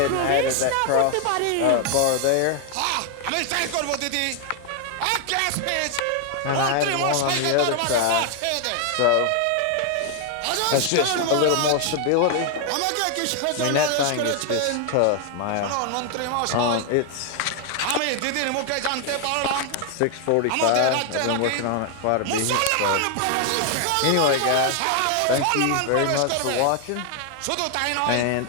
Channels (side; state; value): both; different; correlation 0.00